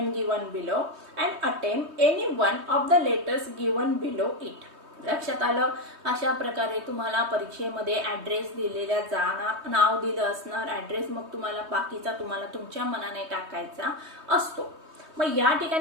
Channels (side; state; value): left; late; 3.2 ms